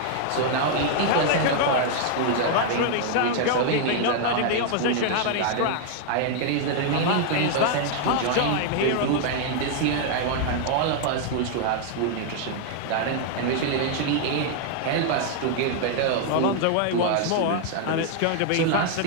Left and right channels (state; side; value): different; both; correlation 0.00